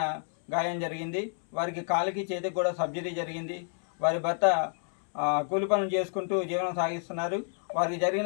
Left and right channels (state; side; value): silent; right; 58 dB below the other